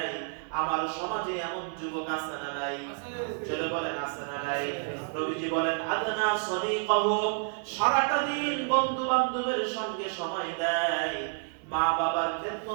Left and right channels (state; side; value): silent; left; 58 dB below the other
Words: আমার সমাজে এমন যুবক আছে না নাই? চলে বলেন আছে না নাই? নবীজি বলেন আদনা সাদিকাহু। সারাটা দিন বন্ধু বান্ধবের সঙ্গে সময় দেয়, মা বাবার